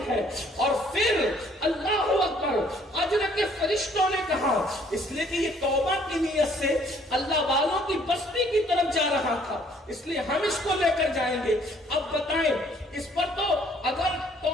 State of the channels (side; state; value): both; normal; correlation 0.61